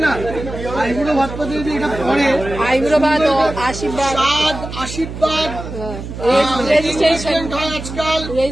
না, আইবুড়ো ভাতপাতে যদি এটা পরে, আইবুড়ো ভাত, আশীর্বাদ, আশীর্বাদ রেজিস্ট্রেশন হয় আজকাল,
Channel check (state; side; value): noise; right; hum, 9 dB below the sound